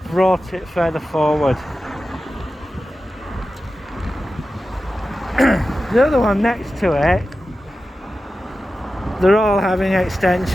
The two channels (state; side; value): normal; both; correlation 0.93